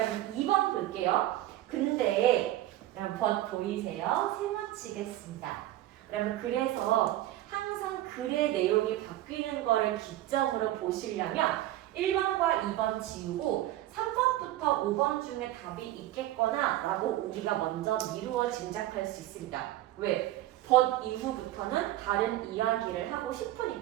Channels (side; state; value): left; quieter; 14.8 dB